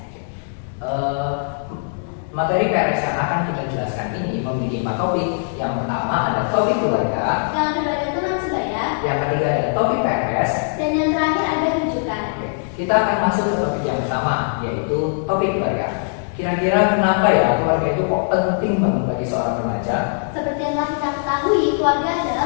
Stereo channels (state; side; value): silent; right; digital silence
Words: Materi PRS yang akan kita jelaskan ini memiliki 4 topik. Yang pertama ada topik keluarga, Yang kedua ada teman sebaya, yang ketiga ada topik PRS, dan yang terakhir ada rujukan. Kita akan masuk ke topik yang pertama, yaitu topik keluarga. Kira-kira kenapa ya keluarga itu kok penting banget bagi seorang remaja? Seperti yang telah kita ketahui, keluarga